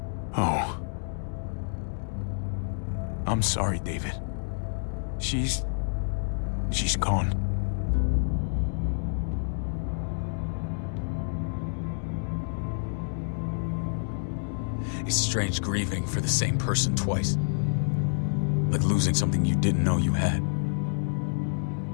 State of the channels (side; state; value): right; silent; digital silence